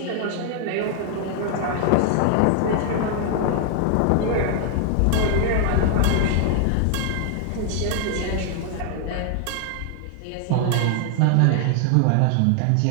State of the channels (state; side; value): different; both; correlation 0.00